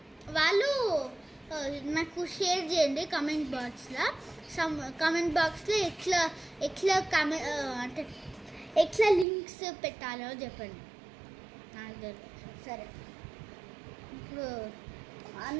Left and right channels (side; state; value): left; drops out; at 9.2 s